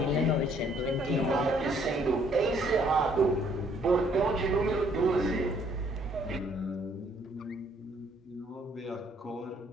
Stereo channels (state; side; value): normal; both; correlation 0.64